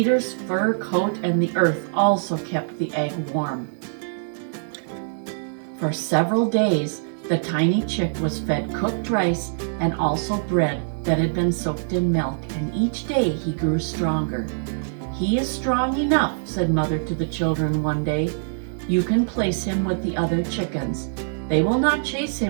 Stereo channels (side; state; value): left; silent; digital silence